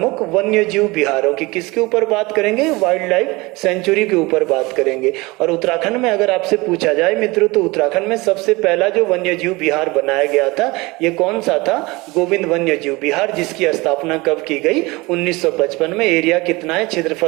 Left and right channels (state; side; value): quieter; left; 23.2 dB